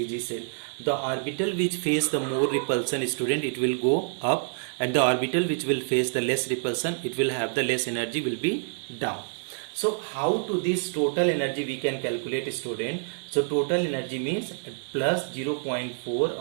set. The orbital which face the more repulsion student, it will go up, and the orbital which will face the less repulsion, it will have the less energy, will be down. So how to this total energy we can calculate student? So total energy means plus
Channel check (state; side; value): silent; left; digital silence